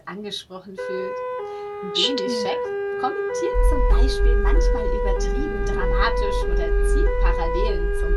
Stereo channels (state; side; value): identical; both; correlation 1.00